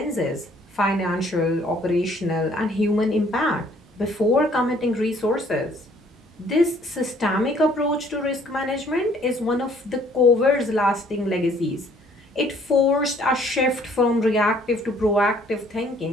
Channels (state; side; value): normal; both; correlation 0.61